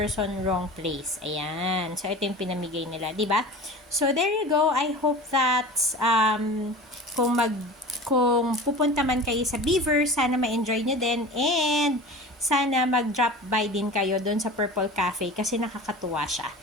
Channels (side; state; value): both; normal; correlation 0.36